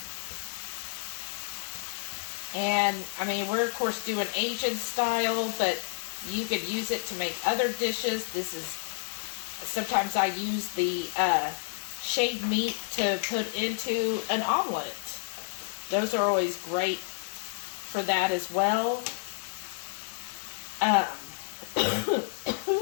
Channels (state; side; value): silent; right; 58 dB below the other